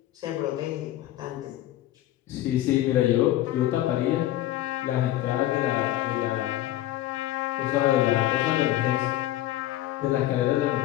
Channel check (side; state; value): right; quieter; 14.4 dB